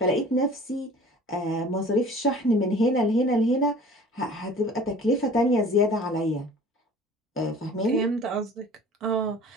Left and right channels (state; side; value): normal; both; correlation 0.46